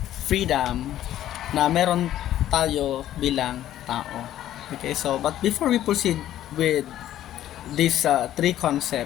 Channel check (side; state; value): right; quieter; 12.5 dB